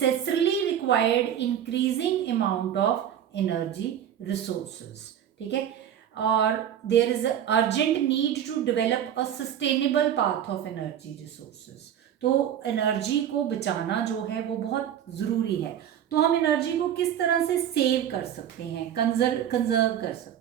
required increasing amount of energy resources. ठीक है, और there is urgent need to develop a sustainable path of energy resources. तो एनर्जी को बचाना जो है वो बहुत ज़रूरी है. तो हम एनर्जी को किस तरह से सेव कर सकते हैं, कंजर्व कर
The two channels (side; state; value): left; quieter; 10.0 dB